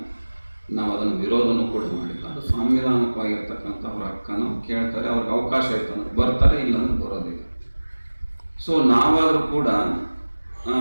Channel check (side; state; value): both; inverted; correlation -1.00